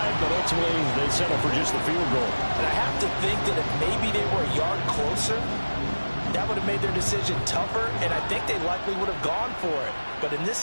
but ultimately they settle for just the field goal. And I have to think that if maybe they were a yard closer, that would have made their decision tougher, and I think they likely would have gone for it. But in this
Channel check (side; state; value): both; inverted; correlation -1.00